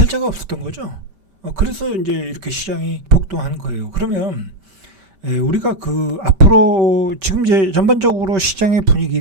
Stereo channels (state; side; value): late; left; 5.1 ms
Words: 없었던 거죠. 그래서 이제 이렇게 시장이 폭등한 거예요. 그러면 우리가 앞으로 지금 이제 전반적으로 시장의